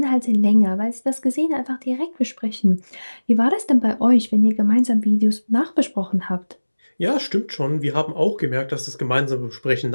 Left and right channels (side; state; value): both; inverted; correlation -1.00